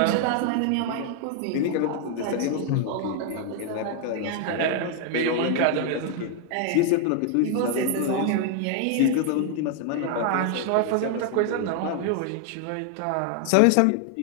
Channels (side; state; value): both; different; correlation 0.00